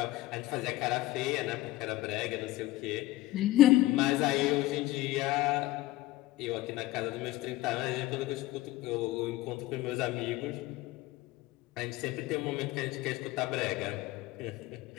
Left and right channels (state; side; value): quieter; right; 16.9 dB